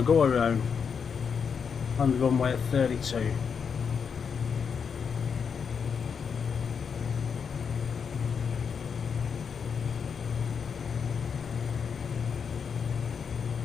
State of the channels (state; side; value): quieter; right; 6.4 dB